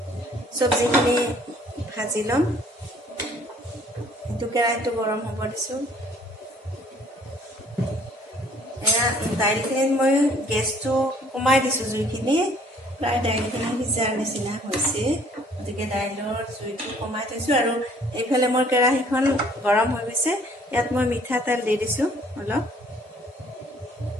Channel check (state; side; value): normal; both; correlation 0.58